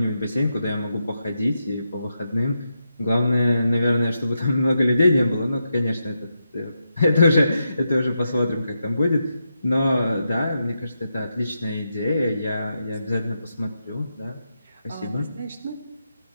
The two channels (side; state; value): both; inverted; correlation -0.86